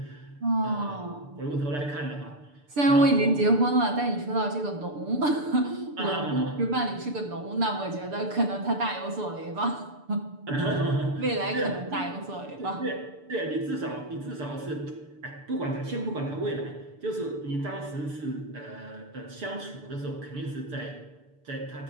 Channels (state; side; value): late; left; 6.8 ms